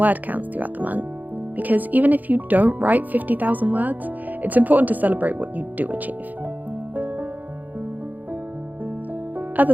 counts throughout the month, because even if you don't write 50,000 words, it's important to celebrate what you do achieve.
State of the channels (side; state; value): left; late; 0.082 ms